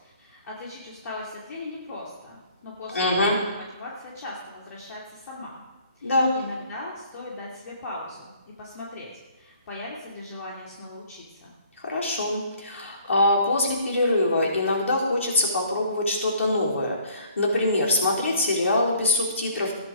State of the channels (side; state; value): both; inverted; correlation -0.58